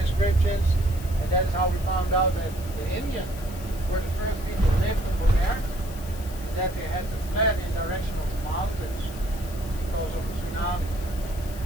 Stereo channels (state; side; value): noise; left; hiss, 17 dB below the sound